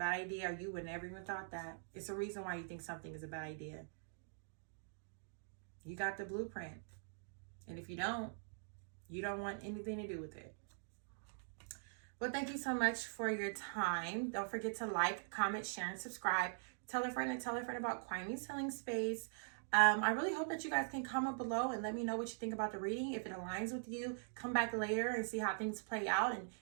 idea, or you would never even thought that. It's a reason why you think something is a bad idea. You got the blueprint. And if you don't want anything to do with it. Well, thank you so much for your time. Don't forget to like, comment, share, and subscribe. Tell a friend and tell a friend about Kwaime's Healing Space. I really hope that you guys can comment below and let me know what you think about the reading. If it aligns with you, come back later and see how things play out and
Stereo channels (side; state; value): left; silent; digital silence